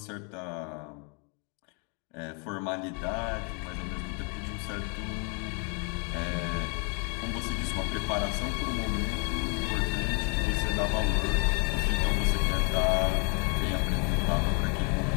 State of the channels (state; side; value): quieter; right; 36.3 dB